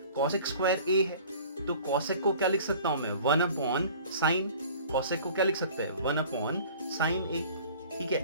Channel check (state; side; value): inverted; both; correlation -0.47